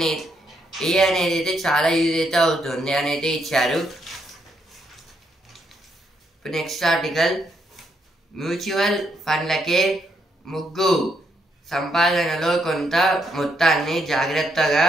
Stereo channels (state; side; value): normal; both; correlation 0.76